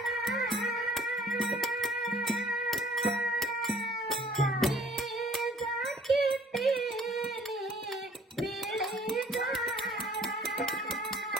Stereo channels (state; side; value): normal; both; correlation 0.56